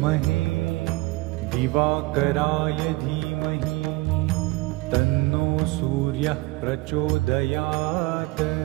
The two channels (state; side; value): quieter; left; 21.3 dB